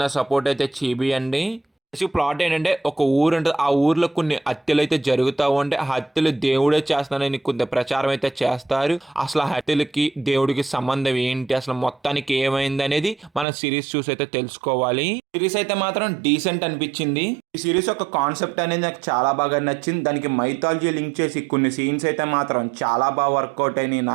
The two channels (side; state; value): left; drops out; at 13.5 s